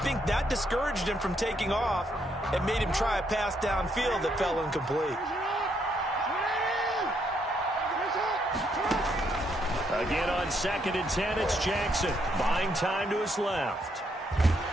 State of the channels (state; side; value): normal; both; correlation 0.74